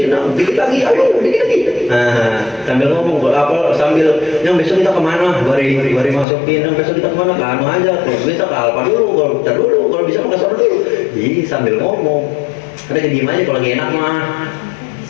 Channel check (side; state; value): right; drops out; at 6.2 s